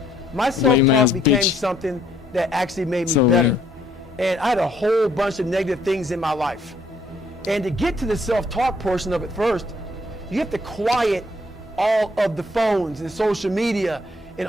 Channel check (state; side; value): normal; both; correlation 0.66